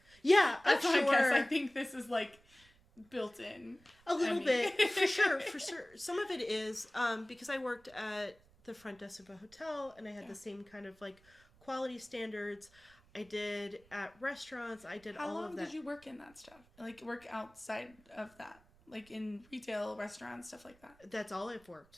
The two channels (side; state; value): right; noise; rumble, 29 dB below the sound